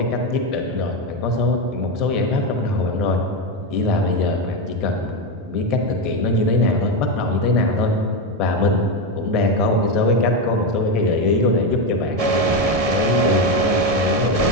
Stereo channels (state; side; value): late; left; 1.7 ms